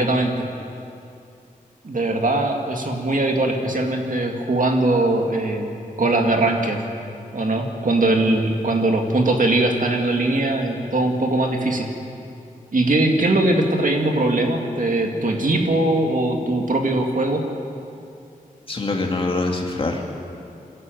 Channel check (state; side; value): normal; both; correlation 0.62